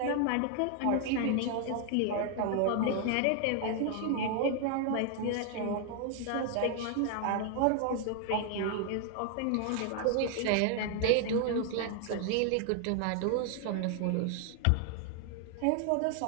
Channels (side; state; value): both; different; correlation 0.00